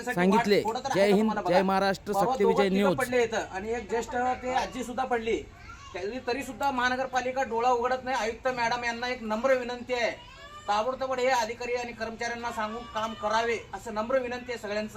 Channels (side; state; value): both; identical; correlation 1.00